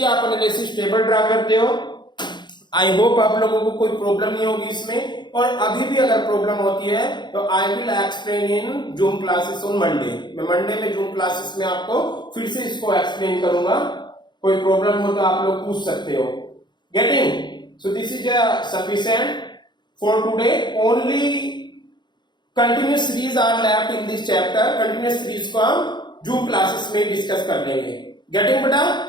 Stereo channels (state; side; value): late; right; 0.21 ms